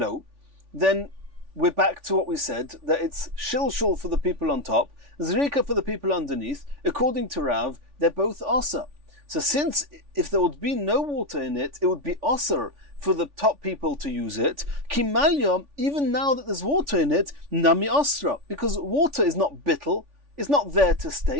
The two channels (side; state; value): left; late; 3.5 ms